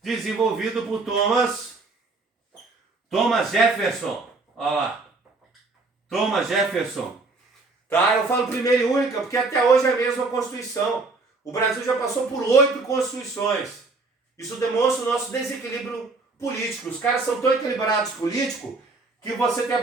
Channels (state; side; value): quieter; left; 3.7 dB